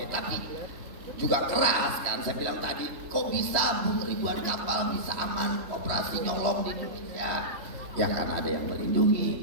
Tapi juga keras kan. Saya bilang tadi, kok bisa ribuan kapal bisa aman operasi nyolong di Indonesia? Ya karena ada yang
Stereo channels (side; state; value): left; late; 3.0 ms